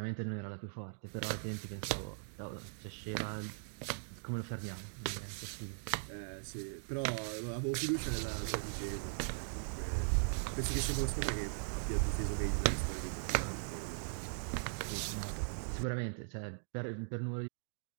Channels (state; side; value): silent; left; digital silence